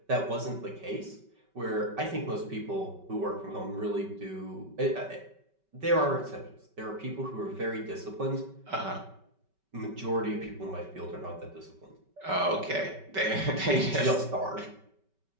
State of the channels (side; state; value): left; late; 5.2 ms